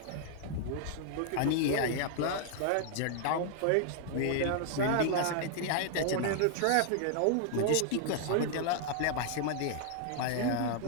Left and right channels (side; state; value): both; different; correlation 0.00